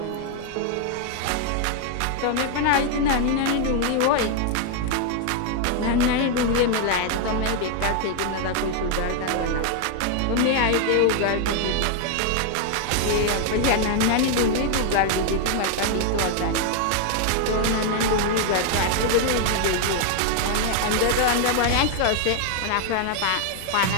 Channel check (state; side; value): different; both; correlation 0.00